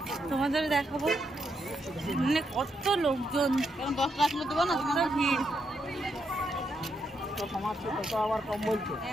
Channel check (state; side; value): normal; both; correlation 0.80